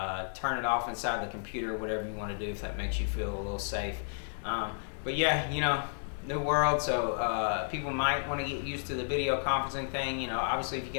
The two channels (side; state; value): right; silent; digital silence